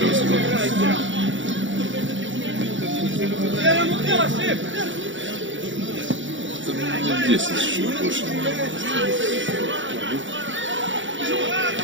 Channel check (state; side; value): late; left; 0.55 ms